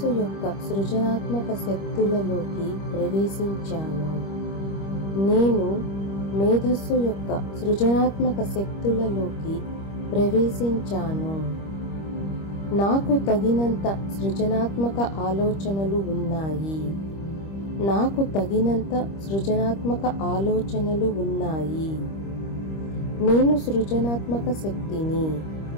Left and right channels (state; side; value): late; right; 25 ms